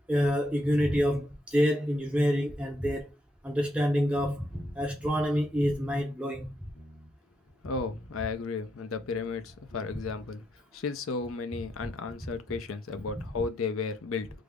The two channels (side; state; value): both; normal; correlation 0.79